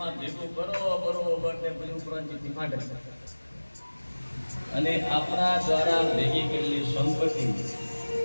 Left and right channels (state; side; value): inverted; both; correlation -1.00